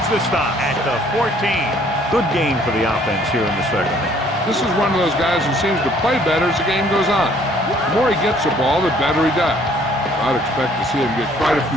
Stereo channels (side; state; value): both; normal; correlation 0.60